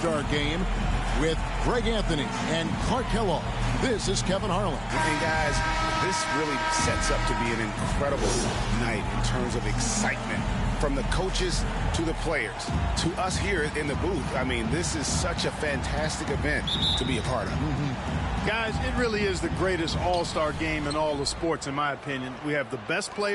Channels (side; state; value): both; identical; correlation 1.00